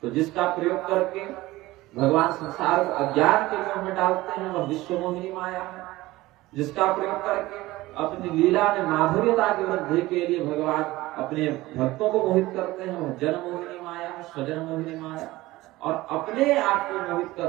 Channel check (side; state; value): left; quieter; 18.5 dB